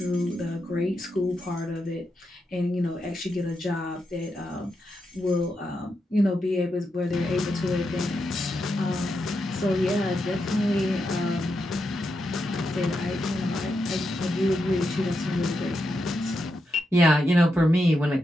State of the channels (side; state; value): both; normal; correlation 0.85